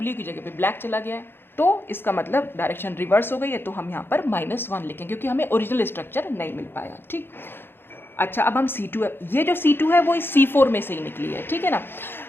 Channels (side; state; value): right; late; 0.10 ms